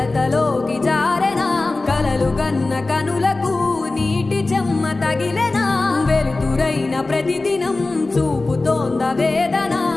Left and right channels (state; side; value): quieter; right; 3.2 dB